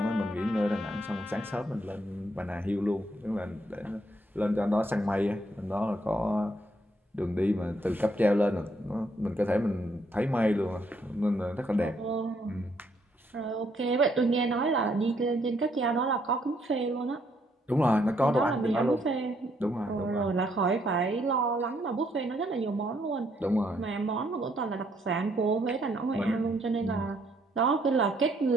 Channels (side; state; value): both; normal; correlation 0.71